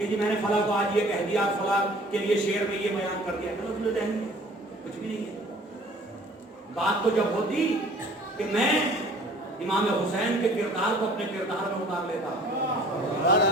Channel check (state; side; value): normal; both; correlation 0.51